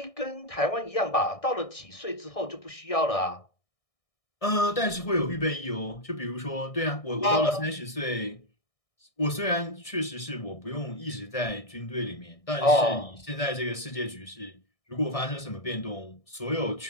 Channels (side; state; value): right; late; 1.6 ms